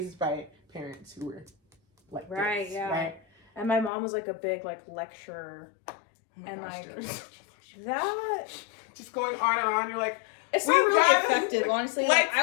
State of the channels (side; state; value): right; drops out; at 3.9 s